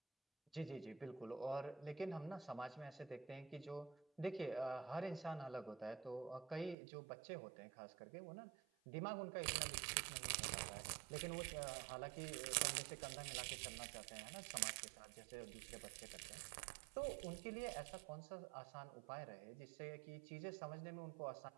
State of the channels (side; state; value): left; drops out; at 6.8 s